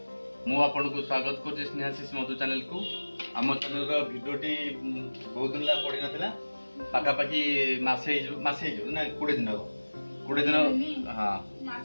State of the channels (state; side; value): inverted; both; correlation -1.00